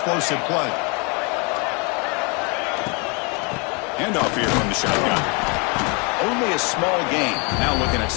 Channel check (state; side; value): quieter; right; 32.6 dB